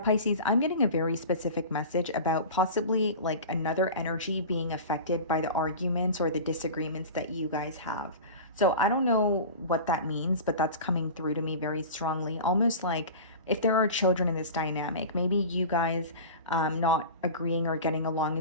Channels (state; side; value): inverted; both; correlation -0.33